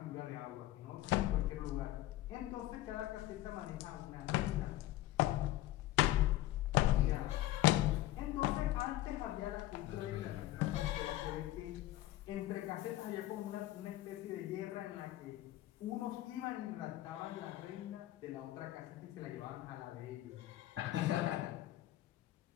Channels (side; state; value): right; quieter; 15.6 dB